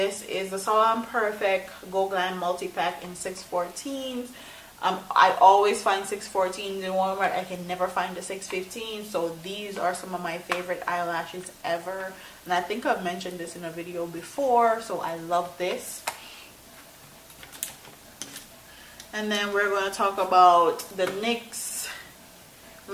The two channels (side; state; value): both; identical; correlation 1.00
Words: is the Salon Perfect Go Glam Multi-Pack in 614s. I always find 614s in Walmart. I can never find the 615. So these are some of my favorite eyelashes ever. And I think I've mentioned this in a video before. So I love this. And then we're going to talk about the NYX